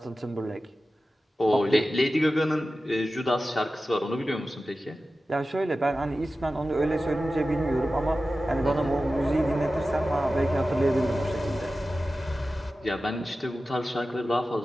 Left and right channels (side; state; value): both; normal; correlation 0.94